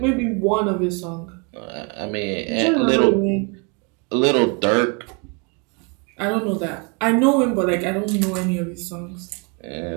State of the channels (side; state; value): left; quieter; 32.4 dB